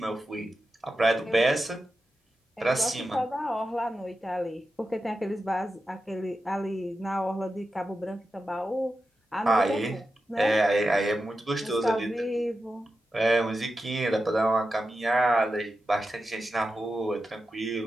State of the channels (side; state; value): both; normal; correlation 0.91